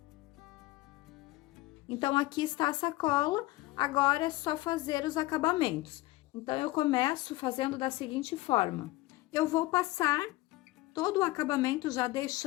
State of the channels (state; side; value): quieter; right; 19.0 dB